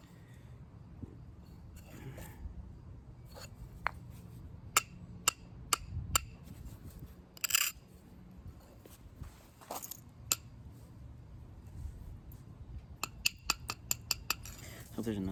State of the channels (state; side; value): identical; both; correlation 1.00